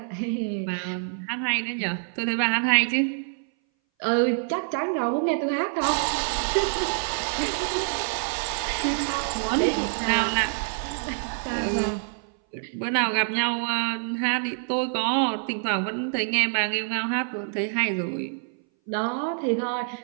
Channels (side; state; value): left; silent; 59 dB below the other